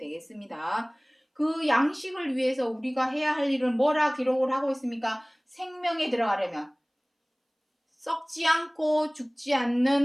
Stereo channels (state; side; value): identical; both; correlation 1.00